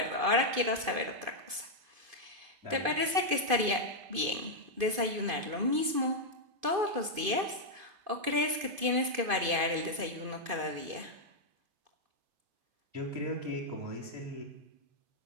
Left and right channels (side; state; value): left; late; 2.5 ms